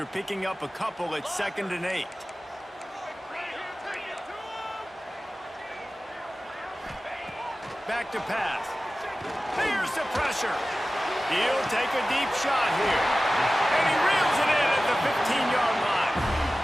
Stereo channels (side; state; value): both; normal; correlation 0.96